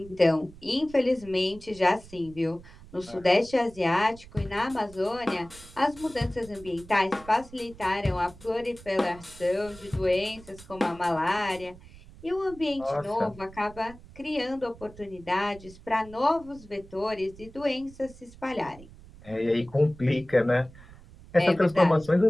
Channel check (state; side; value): noise; right; rumble, 20 dB below the sound